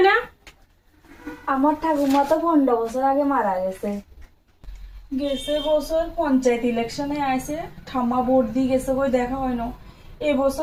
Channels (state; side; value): identical; both; correlation 1.00